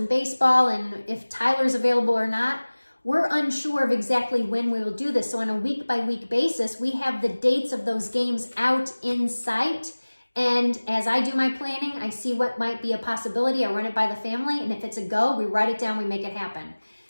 baseball and if Tyler's available or not, we're unsure of exactly when we will do this. So on a week-by-week basis, we have the dates of those games out in sight. And as I do my planning, I see what might be a possibility. I run it by the family, and if it's a go, we write it down, we make it happen.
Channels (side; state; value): both; inverted; correlation -1.00